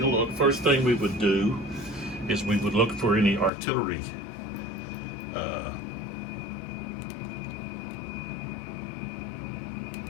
a look. First thing we would do is we would look for any artillery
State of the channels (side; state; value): right; drops out; at 3.5 s